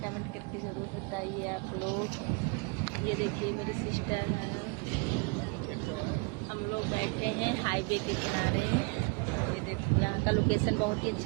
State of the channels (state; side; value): quieter; left; 32.4 dB